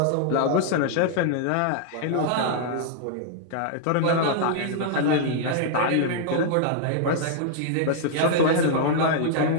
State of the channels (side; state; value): both; different; correlation -0.01